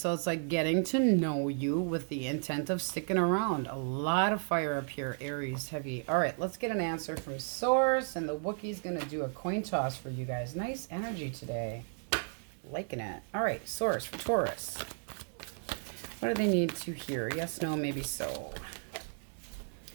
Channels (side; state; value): left; silent; 55 dB below the other